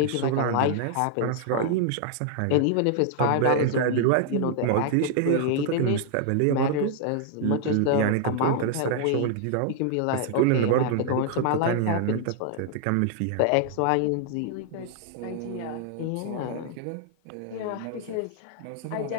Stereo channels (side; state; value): both; different; correlation 0.00